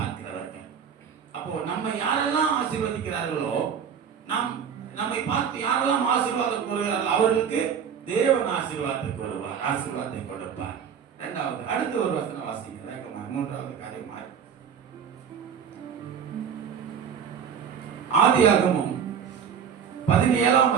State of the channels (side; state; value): left; quieter; 7.5 dB